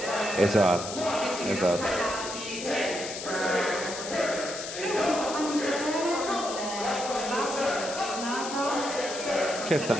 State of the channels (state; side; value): noise; left; hiss, 8 dB below the sound